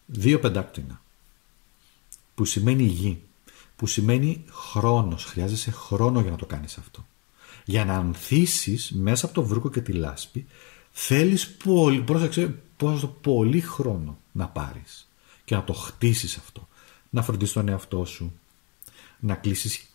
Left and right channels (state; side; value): quieter; right; 30.9 dB